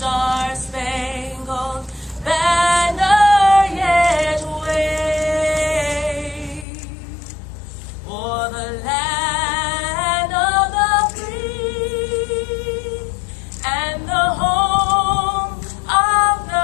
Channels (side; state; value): right; drops out; at 6.7 s